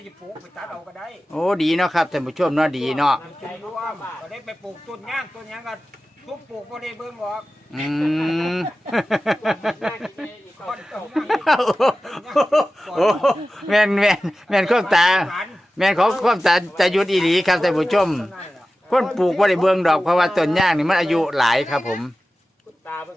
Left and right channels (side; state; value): both; normal; correlation 0.95